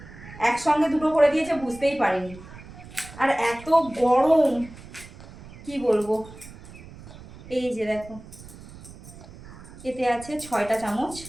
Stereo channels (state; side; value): noise; right; rumble, 17 dB below the sound